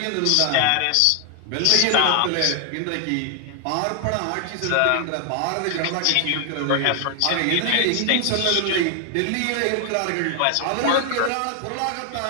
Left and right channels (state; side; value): different; both; correlation 0.00